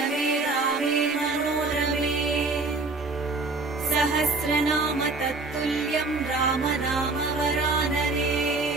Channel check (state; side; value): quieter; left; 3.6 dB